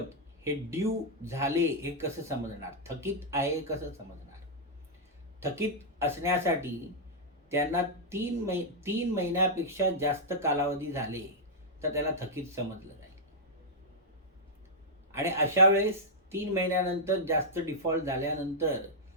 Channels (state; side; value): normal; both; correlation -0.06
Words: हे ड्यू झाले हे कसं समजणार? थकीत आहे कसं समजणार? थकीत असण्यासाठी त्यांना 3 महिन्यापेक्षा जास्त कालावधी झाले तर त्याला थकीत समजलं जाईल. आणि अशा वेळेस 3 महिन्यानंतर जास्त डिफॉल्ट झाल्यानंतर